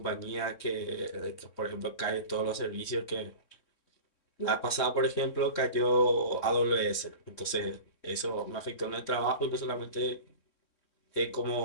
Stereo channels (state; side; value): late; right; 3.6 ms